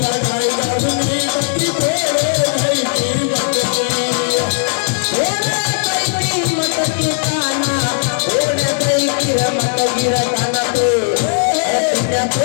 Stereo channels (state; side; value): silent; right; digital silence